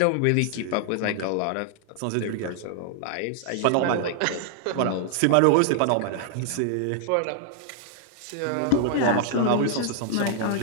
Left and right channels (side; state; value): both; different; correlation 0.00